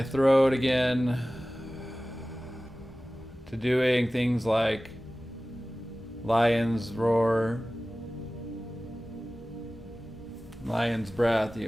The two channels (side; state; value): both; normal; correlation 0.97